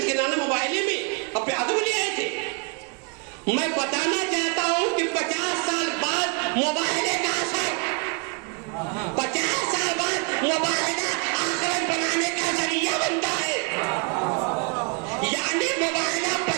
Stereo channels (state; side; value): quieter; left; 34.1 dB